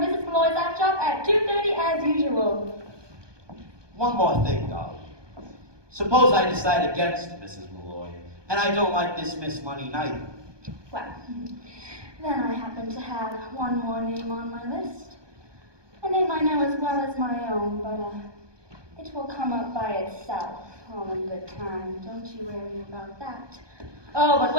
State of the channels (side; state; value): left; late; 1.2 ms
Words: Mrs. Malloy's app shop at 2:30 as usual. One more thing, Dolly. Suppose I decide against Mrs. Malloy, and I don't like this Miss Money neither. Well, then I happen to have one more name on my list. A name I know as well as my own, but it will come up by itself, all in good time. Don't you worry about that. Oh, but